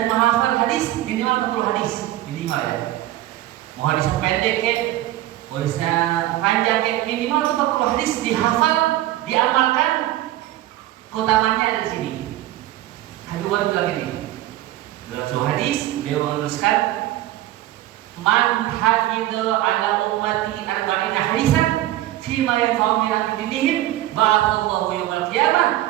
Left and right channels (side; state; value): left; quieter; 15.0 dB